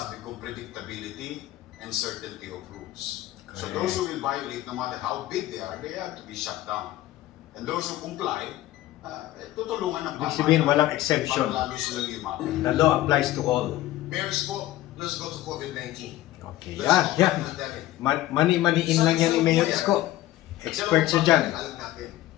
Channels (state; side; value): quieter; right; 15.3 dB